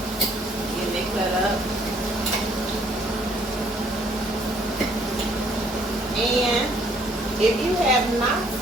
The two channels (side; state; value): both; normal; correlation 0.63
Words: Getting it cut up. And if you have not